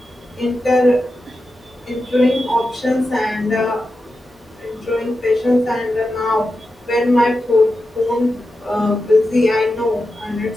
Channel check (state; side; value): normal; both; correlation 0.90